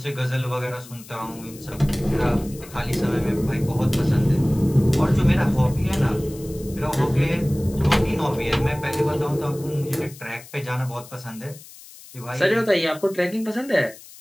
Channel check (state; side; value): noise; left; hiss, 19 dB below the sound